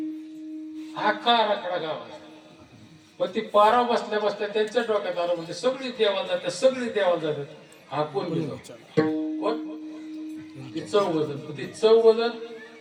आखा आराखडा गाव. पण ती पाराव बसल्या बसल्या त्यांच्या डोक्यात आलं म्हणजे सगळी देवाला जातात सगळी देवाला जातात. हा कोण कोण ती चौघजण. ती चौघजण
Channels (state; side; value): identical; both; correlation 1.00